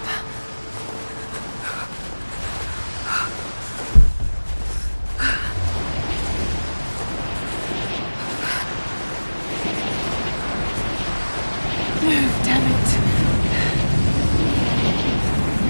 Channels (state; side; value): inverted; both; correlation -1.00